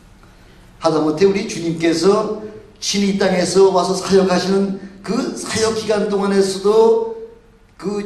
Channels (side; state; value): both; identical; correlation 1.00